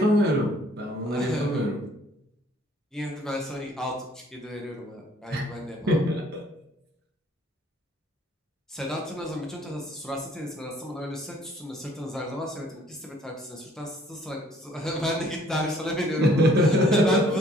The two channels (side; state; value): both; normal; correlation 0.59